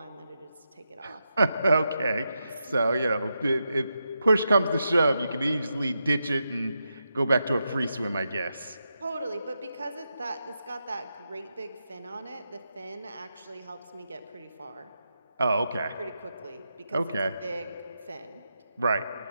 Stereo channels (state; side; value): inverted; both; correlation -0.87